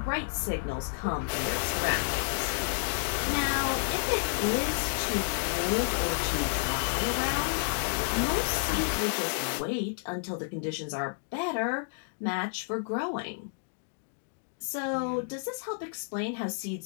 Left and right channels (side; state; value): right; silent; digital silence